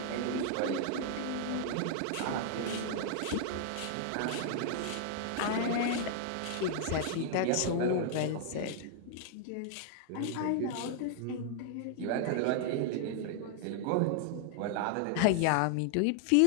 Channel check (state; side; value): different; both; correlation 0.00